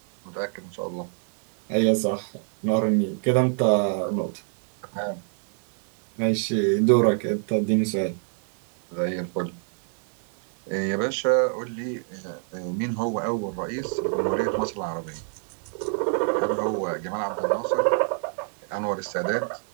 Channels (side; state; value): left; silent; 55 dB below the other